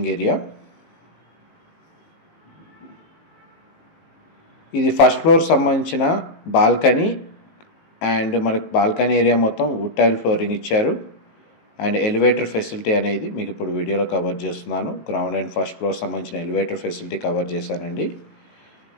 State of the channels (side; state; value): right; late; 18 ms